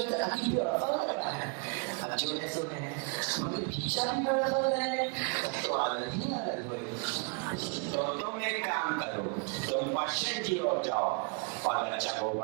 अति व्यवस्था लग रहा है। अब जो ने सुने मगर भिक्षा भी व्यवस्था है तो आनंद ही आनंद हो। तो तुम एक काम करो, तुम पश्चिम की ओर जाओ और बच्चा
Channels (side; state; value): left; quieter; 34.6 dB